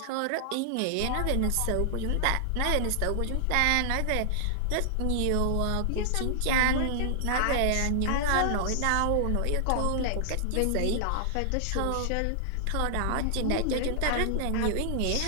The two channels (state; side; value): different; both; correlation 0.00